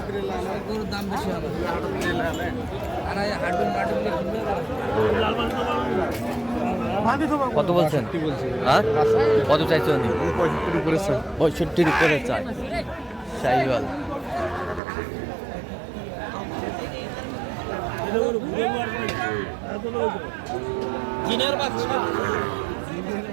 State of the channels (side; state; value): left; drops out; at 14.8 s